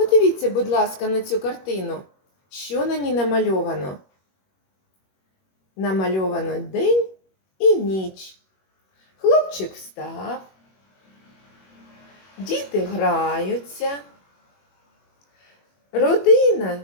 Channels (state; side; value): late; right; 21 ms